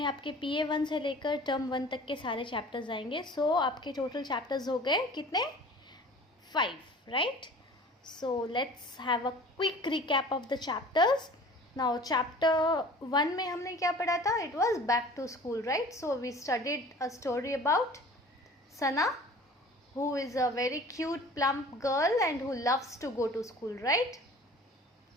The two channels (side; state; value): both; normal; correlation 0.45